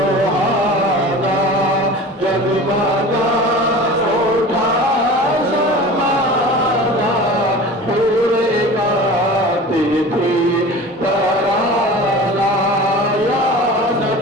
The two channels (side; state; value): both; normal; correlation 0.37